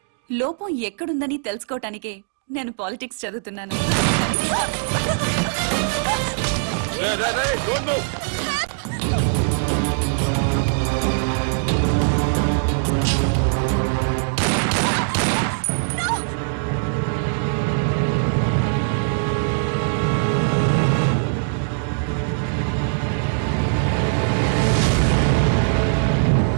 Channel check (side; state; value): left; silent; digital silence